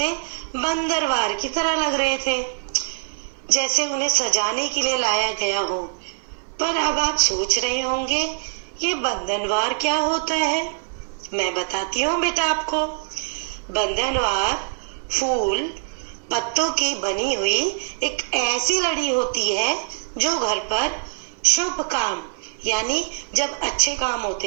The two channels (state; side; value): silent; left; digital silence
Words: बंदरवार की तरह लग रहे थे, जैसे उन्हें सजाने के लिए लाया गया हो। पर अब आप सोच रहे होंगे, ये बंधनवार क्या होता है? मैं बताती हूँ बेटा आपको। बंधनवार फूल पत्तों की बनी हुई एक ऐसी लड़ी होती है जो घर पर शुभ काम, यानी जब अच्छे काम